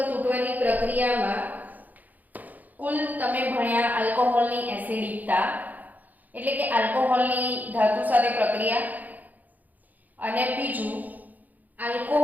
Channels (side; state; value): left; late; 0.081 ms